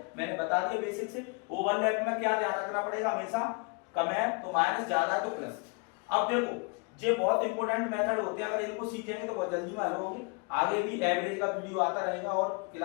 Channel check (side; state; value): right; quieter; 32.6 dB